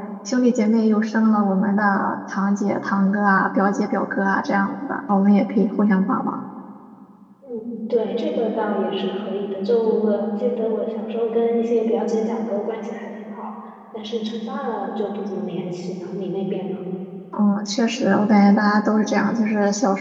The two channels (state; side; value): identical; both; correlation 1.00